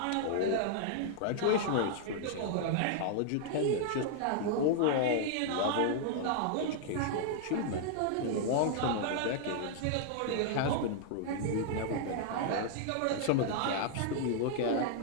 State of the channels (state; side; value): different; both; correlation -0.01